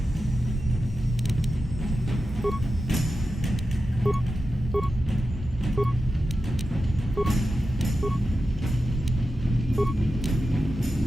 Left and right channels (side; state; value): both; normal; correlation 0.91